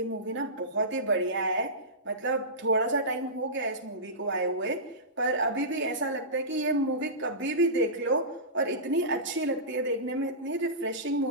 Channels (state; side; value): normal; both; correlation -0.20